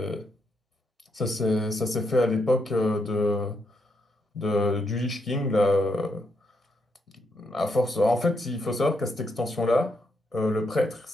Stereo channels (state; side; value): normal; both; correlation 0.79